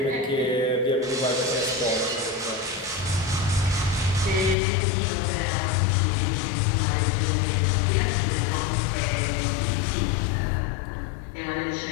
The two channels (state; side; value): drops out; right; at 4.5 s